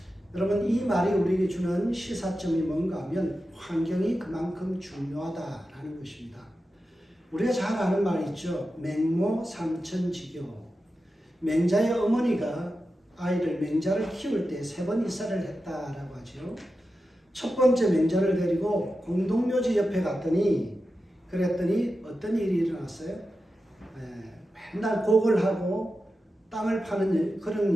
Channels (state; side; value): normal; both; correlation 0.91